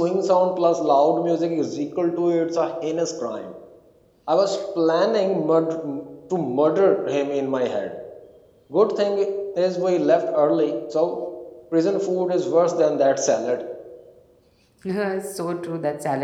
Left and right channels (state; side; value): identical; both; correlation 1.00